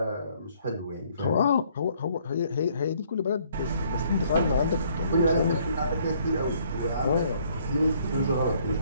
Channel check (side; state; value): both; inverted; correlation -0.64